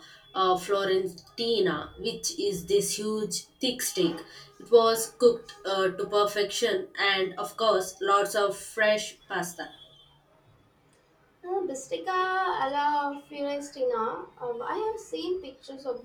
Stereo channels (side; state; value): both; identical; correlation 1.00